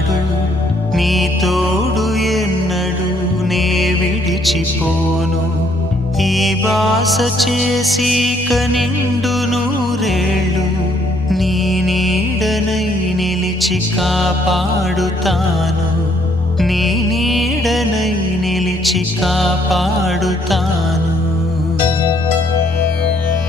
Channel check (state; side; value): normal; both; correlation 0.67